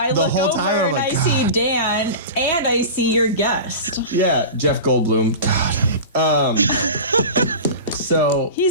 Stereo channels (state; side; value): inverted; both; correlation -0.30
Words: the look whole over time. I'm and like, I God. see Dan and I see your guest. Yeah, Jeff Goldblum. God. So,